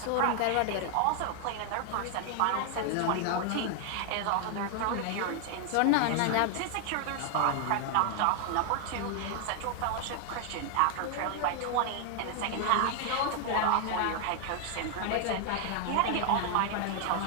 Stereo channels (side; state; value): both; different; correlation 0.00